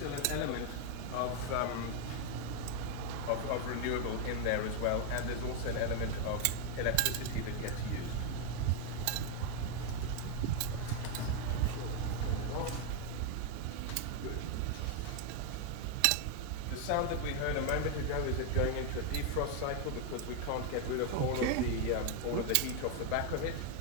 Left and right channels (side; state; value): both; different; correlation 0.00